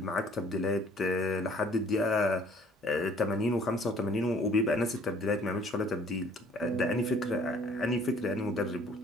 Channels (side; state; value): both; normal; correlation 0.57